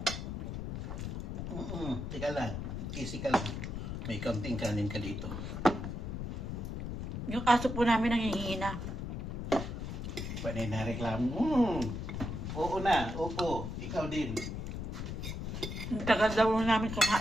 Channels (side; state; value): left; noise; rumble, 4 dB below the sound